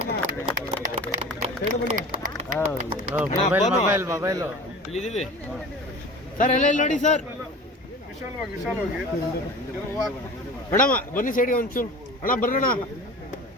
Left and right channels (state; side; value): normal; both; correlation 0.38